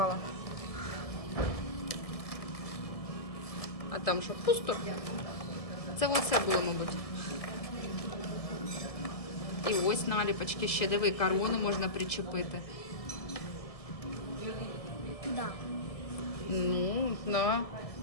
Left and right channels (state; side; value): late; right; 1.7 ms